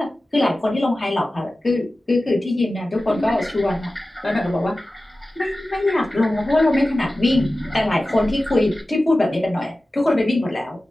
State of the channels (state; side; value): normal; both; correlation 0.96